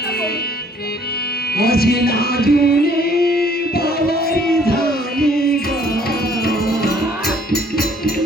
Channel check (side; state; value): both; normal; correlation 0.60